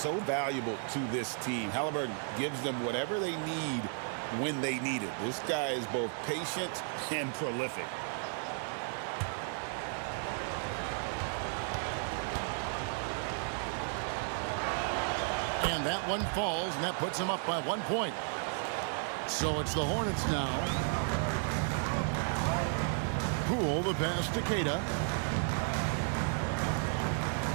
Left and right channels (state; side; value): silent; left; 55 dB below the other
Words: valuable to this team. Halliburton gives them whatever they need when they need it. This guy is both patient and prolific. And that one falls, and that puts them up by 1 point. So it's the Hornets now. Poole, the pass to Queta.